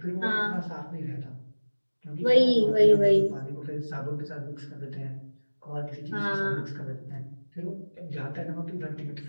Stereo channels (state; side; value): inverted; both; correlation -1.00